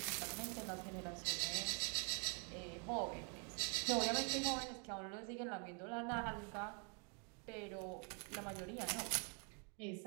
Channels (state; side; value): quieter; left; 37.9 dB